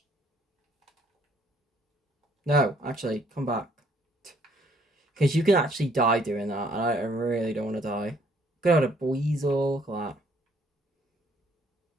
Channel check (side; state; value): both; normal; correlation 0.64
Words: No, actually, come back. Because you can actually die doing that, and I really don't want to die. Got a Weasel, look at